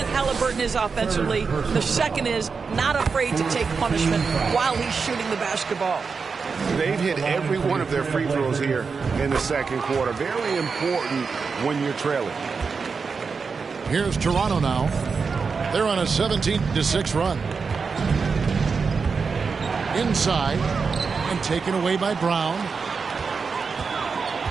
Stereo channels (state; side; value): quieter; left; 5.1 dB